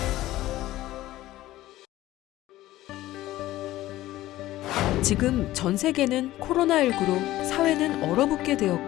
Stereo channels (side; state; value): right; quieter; 15.8 dB